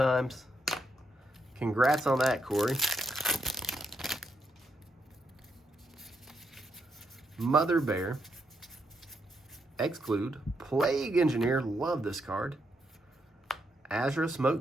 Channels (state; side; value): normal; both; correlation 0.79